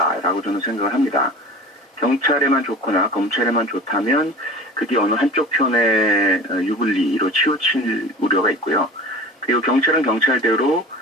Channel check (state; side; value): normal; both; correlation 0.38